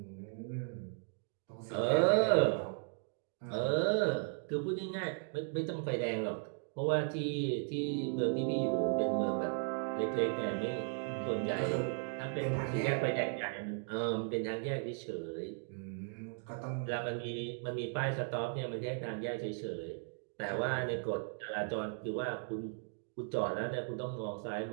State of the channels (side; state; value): left; silent; 53 dB below the other